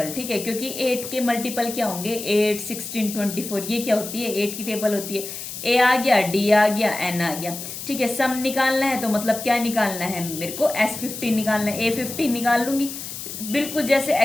ठीक है। क्योंकि 8 के मल्टीपल क्या होंगे, 8, 16, 24, ये क्या होती है, 8 की टेबल होती है। ए आ गया, डी आ गया, एन आ गया, ठीक है। सम निकालना है तो मतलब क्या निकालना है मेरे को, S15 निकालना है। A15 निकाल लूंगी, बिल्कुल जैसे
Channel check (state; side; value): noise; left; hiss, 9 dB below the sound